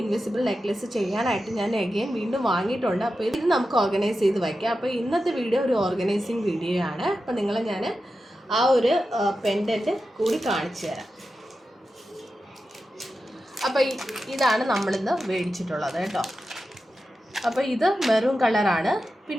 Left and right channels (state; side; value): normal; both; correlation 0.91